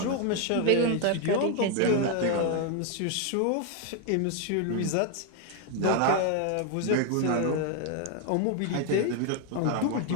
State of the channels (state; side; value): different; both; correlation 0.01